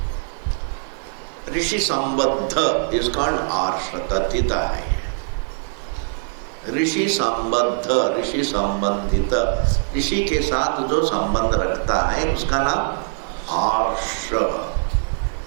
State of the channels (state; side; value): silent; left; digital silence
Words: Rishi Sambandha is called Arsha Tatita. ऋषि संबद्ध, ऋषि संबंधित, ऋषि के साथ जो संबंध रखता है उसका नाम आर्ष.